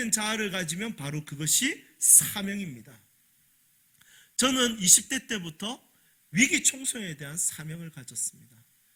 자아를 가지면 바로 그것이 사명입니다. 저는 20대 때부터 위기 청소년에 대한 사명을 가졌습니다.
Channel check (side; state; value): both; identical; correlation 1.00